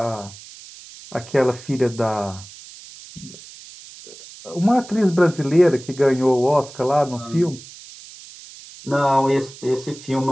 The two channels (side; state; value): right; noise; hiss, 18 dB below the sound